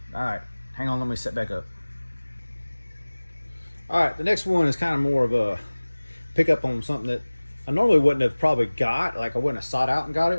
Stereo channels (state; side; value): inverted; both; correlation -1.00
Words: All right. Hang on. Let me set back up. All right. The next one is kind of more of a pickup on something that I normally wouldn't have probably got. Like, I wouldn't have sought out and got